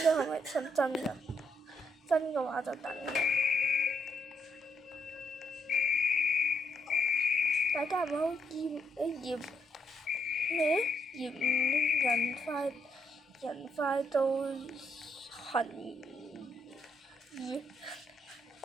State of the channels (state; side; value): normal; both; correlation 0.76